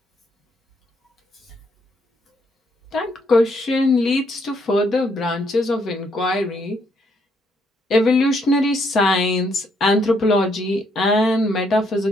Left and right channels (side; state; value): both; normal; correlation 0.72